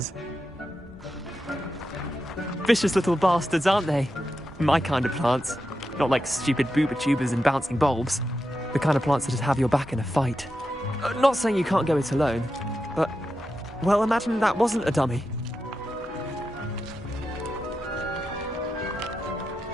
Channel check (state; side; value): normal; both; correlation 0.88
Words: Vicious little bastards, aren't they? My kind of plants. Not like stupid booba tubers and bouncing bulbs. The kind of plants that just have your back in a fight. Not saying you can't go it alone, but... well, imagine that wasn't a dummy.